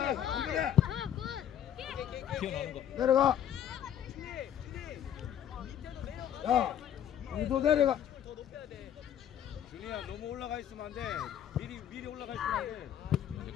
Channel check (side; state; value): right; quieter; 9.9 dB